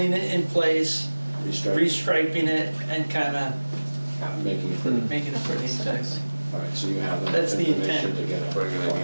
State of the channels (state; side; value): inverted; both; correlation -1.00